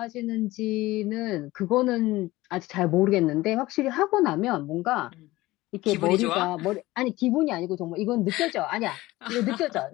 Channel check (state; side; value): quieter; right; 18.6 dB